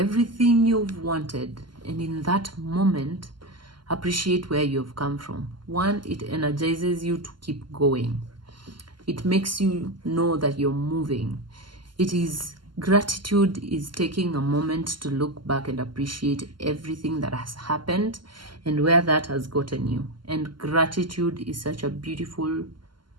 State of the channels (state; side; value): late; left; 0.72 ms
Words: you've wanted. And in that moment, appreciate where you've come from. One, it energizes you to keep going. It makes you know that you're moving. Gratitude is taking a moment to look back and appreciate everything that has happened and where that has gotten you. And gratitude is such a beautiful,